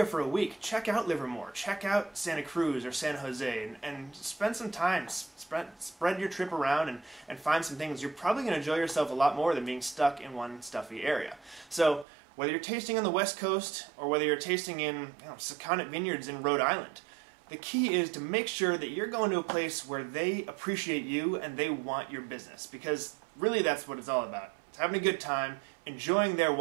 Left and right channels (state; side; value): drops out; left; at 12.1 s